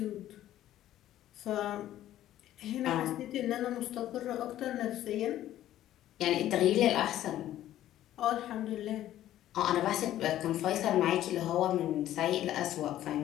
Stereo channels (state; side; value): quieter; right; 13.0 dB